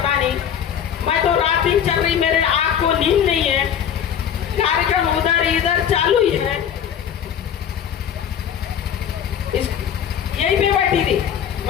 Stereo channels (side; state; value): right; quieter; 8.8 dB